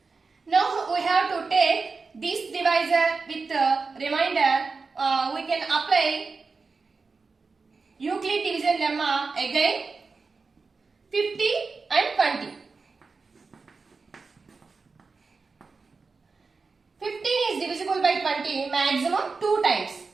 Now we have to take this divisor with remainder. We can apply Euclid division lemma again. 50 and 20. 15 is divisible by 20 maximum 2 times.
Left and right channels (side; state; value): left; quieter; 4.4 dB